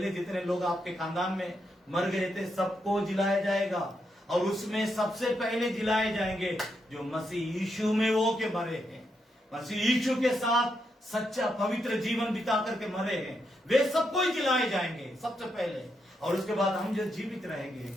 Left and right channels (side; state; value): both; normal; correlation 0.81